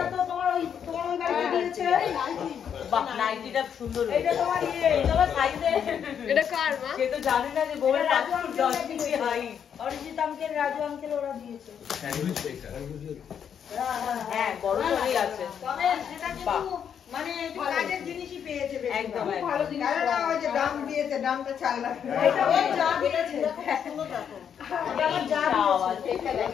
তো তোমার ওই বাড়িতে দিয়েছে বাহ নাইটিটা সুন্দর এইটা তোমার তোমার সাইজে এটা কার মা? সে তো জানে না যে বউয়ের 10 inch height Arijit uncle Raju uncle ওরা দিয়েছে হ্যাঁ বড় করেই আছে তবে সেটা কিন্তু মানে একটু কাজের জিনিসই পেয়েছে বেশি একদম ভালো জিনিস না ওই যে দাম দিয়েছে দামটা 4 লাখ এটা ওই যা দিয়েছে সুন্দর দেখো এটা আমার যা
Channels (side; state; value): right; quieter; 8.1 dB